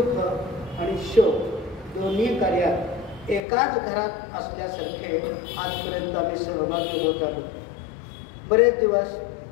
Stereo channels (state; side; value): drops out; right; at 3.4 s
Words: आणि शोक दोन्ही कार्यात एकाच घरात असल्यासारखे आजपर्यंत आम्ही सहभागी होत आलो. बरेच दिवस